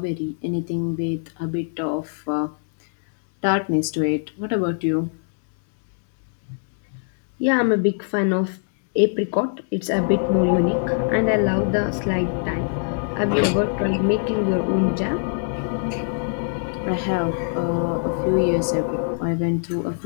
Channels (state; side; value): silent; right; 64 dB below the other